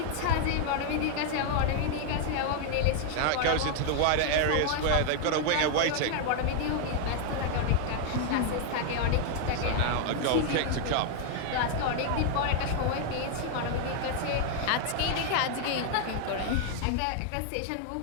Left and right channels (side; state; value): both; different; correlation 0.00